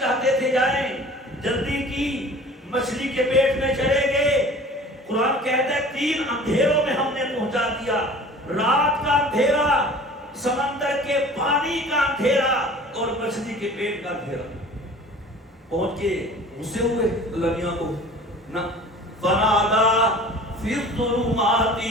تھے جائیں، جلدی کی، مچھلی کے پیٹ میں چلے گئے۔ قرآن کہتا ہے 3 اندھیروں میں ہم نے پہنچا دیا، رات کا اندھیرا، سمندر کے پانی کا اندھیرا اور مچھلی کے پیٹ کا اندھیرا۔ پہنچ کے غصے ہوئے اللہ میاں کو نہ، فنادا فی الظلمات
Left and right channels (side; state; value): both; normal; correlation 0.44